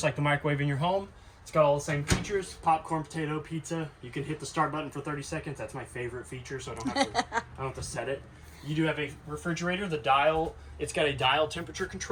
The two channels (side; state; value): both; identical; correlation 1.00